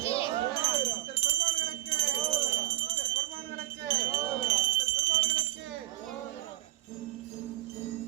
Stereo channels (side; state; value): left; quieter; 16.5 dB